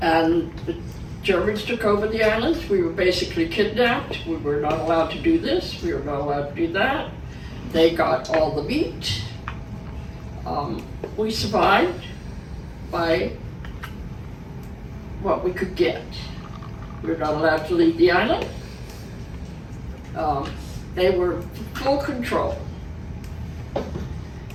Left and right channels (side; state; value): both; identical; correlation 1.00